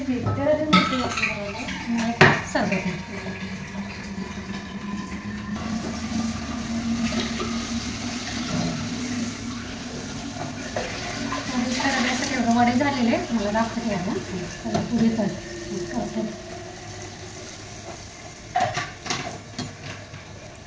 सरबत. एवढं वडे झालेले मला दाखवते याला त्याला पुढे करते.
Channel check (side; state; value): both; identical; correlation 1.00